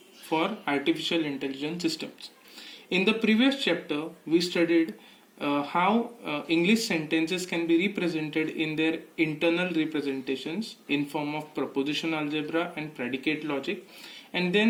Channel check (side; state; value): both; identical; correlation 1.00